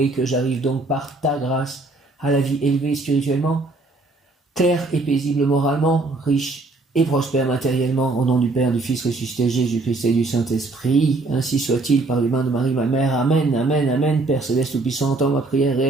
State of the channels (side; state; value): left; quieter; 3.2 dB